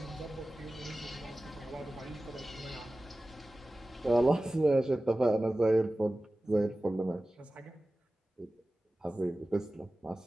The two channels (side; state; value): both; normal; correlation 0.96